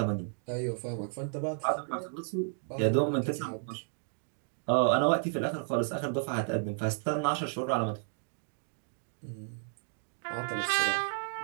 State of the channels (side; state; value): left; silent; digital silence